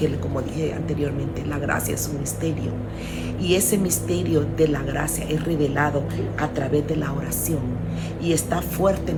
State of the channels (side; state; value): both; identical; correlation 1.00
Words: como dije anteriormente, la gracia es un misterio, y ese misterio de la gracia es revelado a través de la oración y está